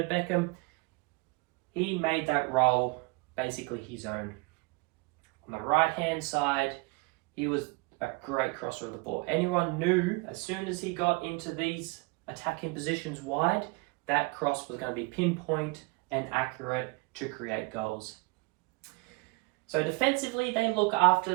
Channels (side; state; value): left; quieter; 27.1 dB